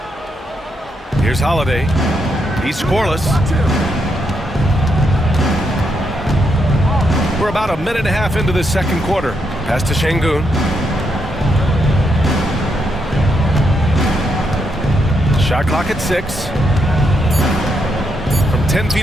Here's Holiday. He's scoreless. We're about a minute and a half into this second quarter. Pass to Şengün. Shot clock at 6. From 10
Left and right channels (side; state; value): both; normal; correlation 0.79